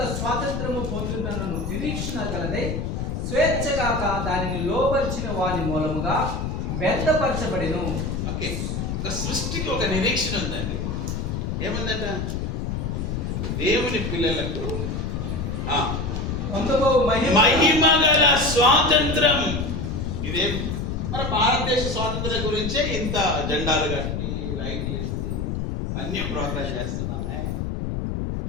స్వాతంత్రము పొందుతున్న నిరీక్షణ కలదై స్వేచ్ఛగాక దానిని లోపరిచిన వాని మూలముగా వ్యర్థపరచబడిను. ఓకే, సృష్టికి ఒక నిరీక్షణ ఉందండి. ఏముందట? దేవుని పిల్లలకు పొందుకో మహిమ గల స్వాతంత్రం. ఇదే మన భారతదేశ స్వాతంత్రం గురించే ఇంత జెండాలు కట్టి లైట్ వేసి అన్ని ప్రోగ్రామ్ చేస్తున్నామే.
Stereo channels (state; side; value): noise; left; rumble, 2 dB below the sound